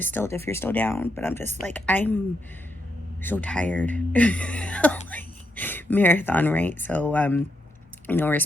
still, if you're still down. But I'm just like, I'm so tired. Marathon, right? So, you know, we're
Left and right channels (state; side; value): normal; both; correlation 0.81